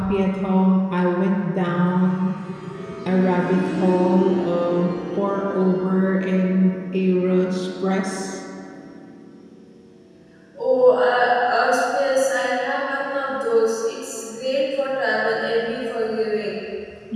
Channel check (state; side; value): identical; both; correlation 1.00